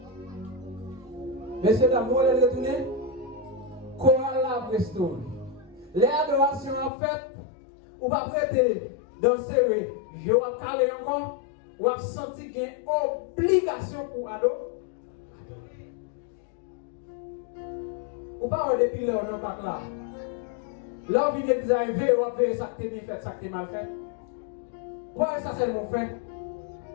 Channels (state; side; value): drops out; right; at 6.9 s